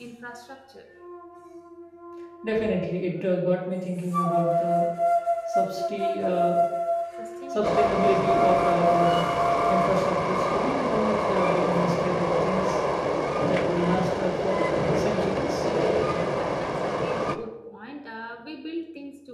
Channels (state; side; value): identical; both; correlation 1.00